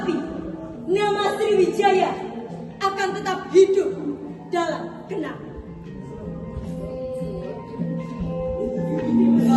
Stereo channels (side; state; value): both; identical; correlation 1.00